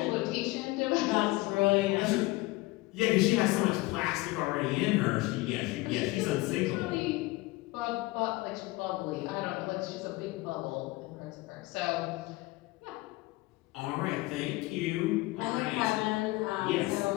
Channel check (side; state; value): right; quieter; 21.3 dB